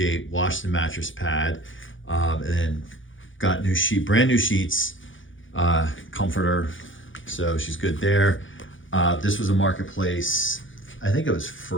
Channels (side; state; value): right; late; 0.56 ms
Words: Washed the mattress pad, and then got brand new sheets, comforter. So she's good there. This was a Marketplace. I think it was